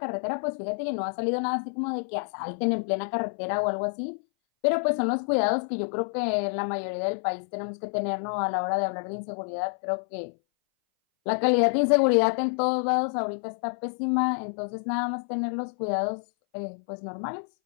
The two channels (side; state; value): right; silent; 58 dB below the other